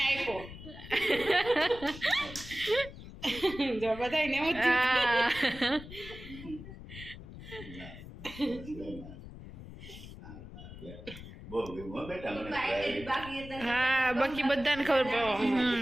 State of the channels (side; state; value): left; noise; rumble, 14 dB below the sound